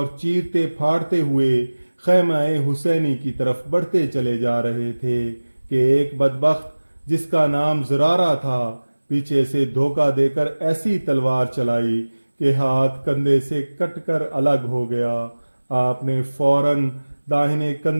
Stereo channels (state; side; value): inverted; both; correlation -1.00